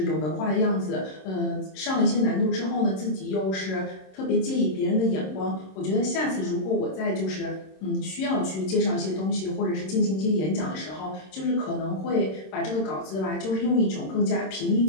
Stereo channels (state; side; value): late; right; 26 ms